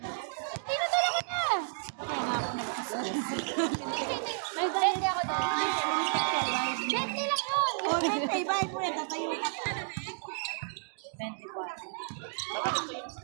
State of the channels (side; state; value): left; silent; digital silence